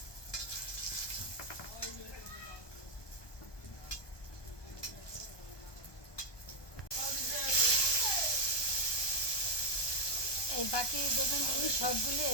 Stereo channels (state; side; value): late; right; 1.2 ms